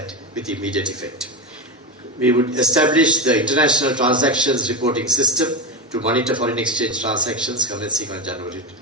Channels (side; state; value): both; normal; correlation 0.16